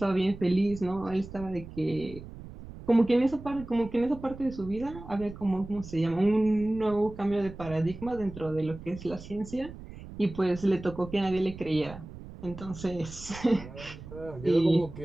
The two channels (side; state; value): right; noise; rumble, 14 dB below the sound